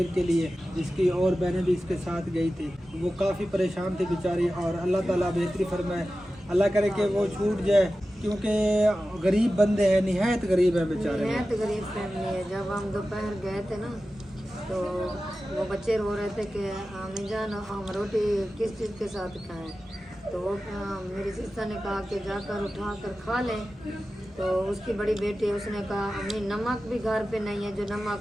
के लिए, इसकी और बहनें भी इसके साथ गई थी। वो काफ़ी परेशान थी बेचारी, और अल्लाह ताला बेहतरी फरमाए, अल्लाह करे कि वो छूट जाए, क्योंकि गरीब बंदे हैं, निहायत गरीब है बेचारे। निहायत गरीब फैमिली है। जब हम दोपहर गए थे ना तो वो बच्चे रो रहे थे कि अम्मी जान हम रोटी किस चीज़ के साथ खाएं, तो वो मेरी सिस्टर ने कहा कि जाकर उठा कर खा लें। तो उसकी बड़ी बेटी उसने कहा अम्मी नमक भी घर पे नहीं है, जो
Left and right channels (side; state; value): both; normal; correlation 0.94